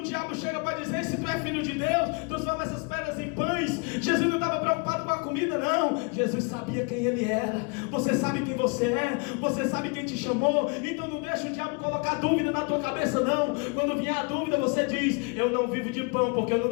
diabo chega para dizer: se tu é filho de Deus, transforma essas pedras em pães, Jesus não estava preocupado com a comida, não. Jesus sabia quem ele era. Você sabe quem você é, você sabe quem te chamou. Então não deixa o diabo colocar dúvida na tua cabeça, não. Quando vier a dúvida, você diz: eu não vivo de pão, porque eu não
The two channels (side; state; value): right; quieter; 33.3 dB